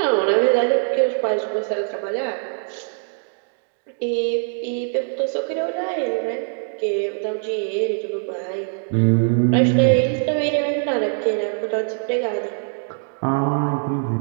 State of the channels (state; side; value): silent; left; 64 dB below the other